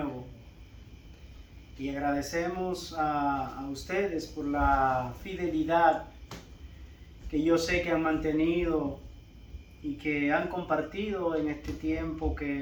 Y agradecemos a ustedes por la fidelidad que yo sé que han mantenido y que han compartido en este tiempo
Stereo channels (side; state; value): both; identical; correlation 1.00